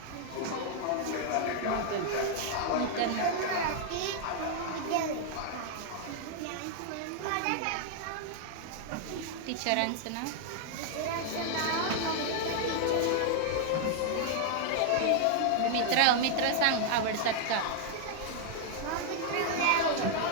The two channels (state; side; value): different; both; correlation 0.00